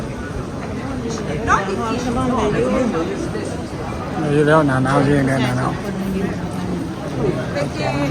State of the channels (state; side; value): identical; both; correlation 1.00